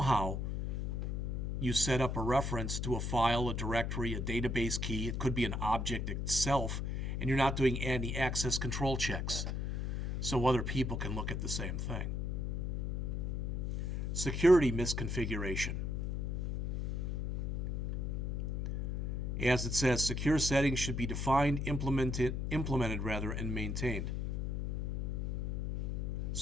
you set up a reference to a file, a directory, a database key. It could be an object itself, and you're not doing any access control checks, so other people can look at the same thing. Security misconfiguration. As it says, secure settings should be defined, implemented, and maintained.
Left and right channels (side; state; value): left; noise; hum, 1 dB below the sound